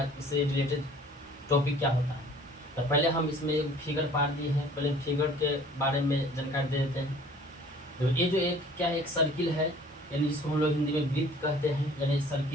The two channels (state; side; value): normal; both; correlation 0.51